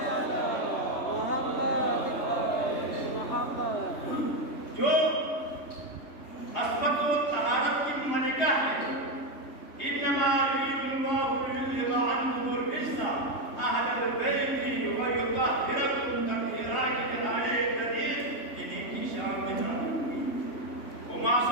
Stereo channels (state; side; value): late; right; 3.2 ms